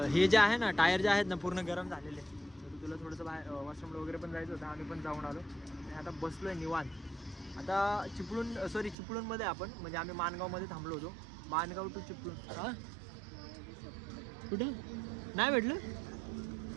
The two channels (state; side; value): drops out; left; at 9.0 s